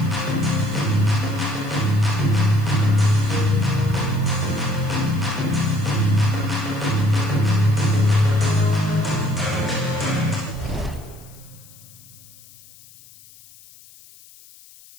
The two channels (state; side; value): noise; left; hiss, 23 dB below the sound